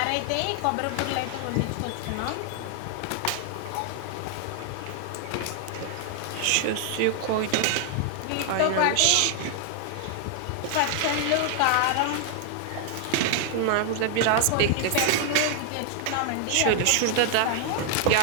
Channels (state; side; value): different; both; correlation 0.00